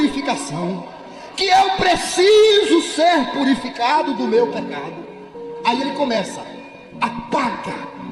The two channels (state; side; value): identical; both; correlation 1.00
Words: que eu preciso ser purificado do meu pecado. Aí ele começa: apaga